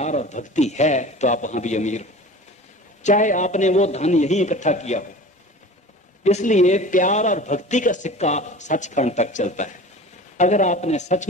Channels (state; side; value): normal; both; correlation 0.39